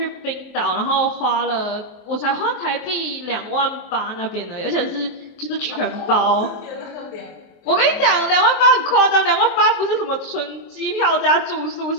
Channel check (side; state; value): right; late; 24 ms